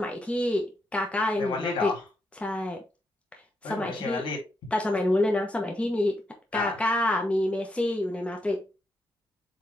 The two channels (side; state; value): both; normal; correlation 0.81